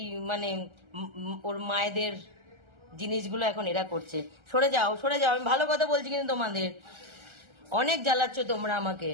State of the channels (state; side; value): late; left; 1.3 ms